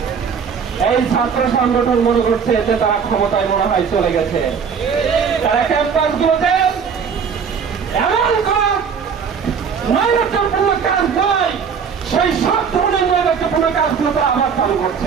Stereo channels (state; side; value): quieter; left; 6.5 dB